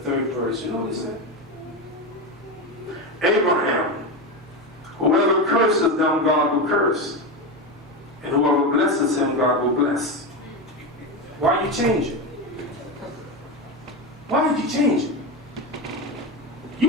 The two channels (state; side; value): normal; both; correlation 0.17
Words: 3rd verse. You know what it said? Abraham, whoever curses them, God will curse. And whoever blesses him, God will bless. Why you change it? Why did you change it?